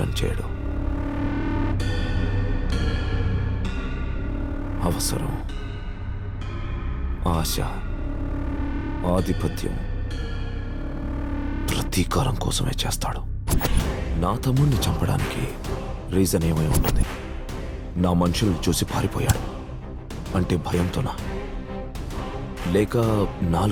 చేయడం. అవసరం, ఆశ, ఆధిపత్యం, ప్రతీకారం కోసమే చేస్తాడు. నా తమ్ముడిని చంపడానికి రీజన్ ఏమై ఉంటుంది? నా మనుషుల్ని చూసి పారిపోయాడు అంటే భయంతోనా? లేక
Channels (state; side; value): identical; both; correlation 1.00